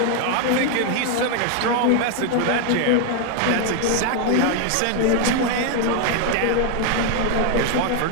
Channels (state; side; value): different; both; correlation 0.01